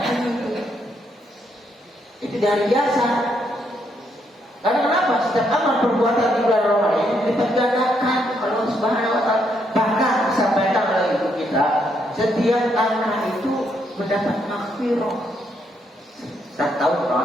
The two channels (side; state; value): both; normal; correlation 0.75